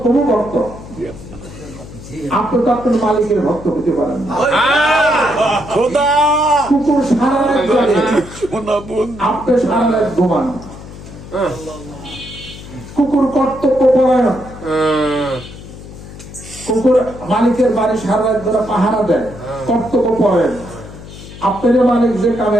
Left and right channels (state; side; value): noise; left; hum, 15 dB below the sound